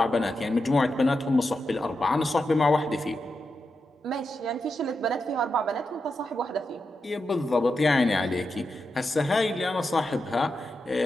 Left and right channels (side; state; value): both; normal; correlation 0.87